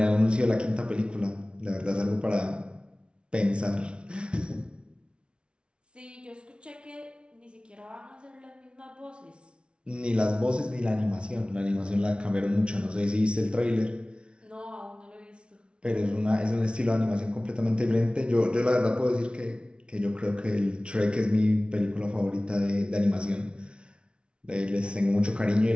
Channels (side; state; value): left; late; 0.058 ms